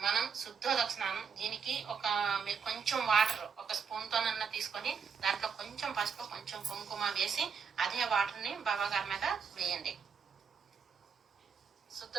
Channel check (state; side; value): quieter; left; 6.2 dB